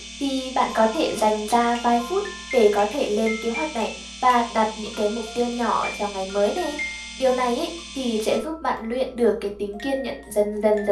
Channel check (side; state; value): both; identical; correlation 1.00